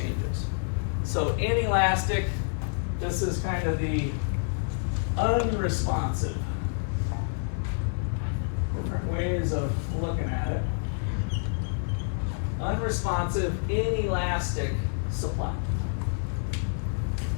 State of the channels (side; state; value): right; silent; digital silence